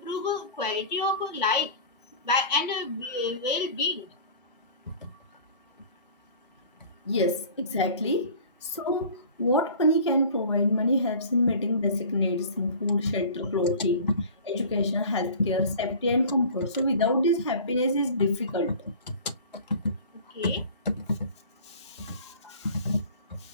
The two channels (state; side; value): inverted; both; correlation -0.42